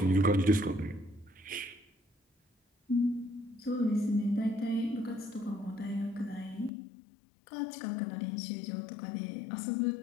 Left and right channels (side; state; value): right; drops out; at 6.7 s